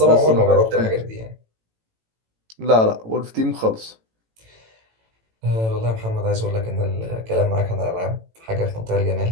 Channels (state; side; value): late; left; 18 ms